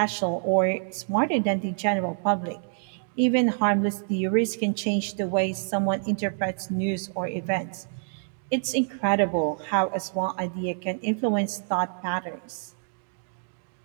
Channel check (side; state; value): left; silent; 59 dB below the other